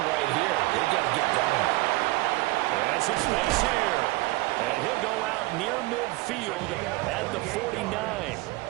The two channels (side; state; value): left; quieter; 21.1 dB